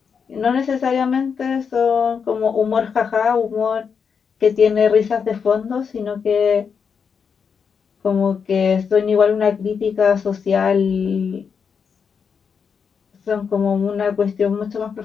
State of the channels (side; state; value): right; quieter; 6.3 dB